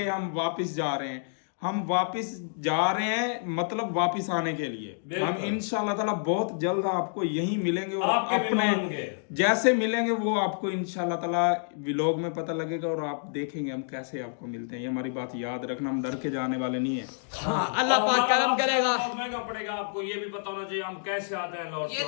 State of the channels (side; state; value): right; silent; digital silence